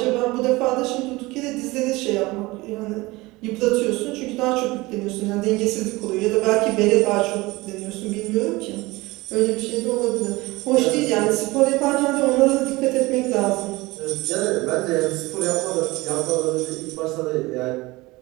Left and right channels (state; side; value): quieter; left; 21.5 dB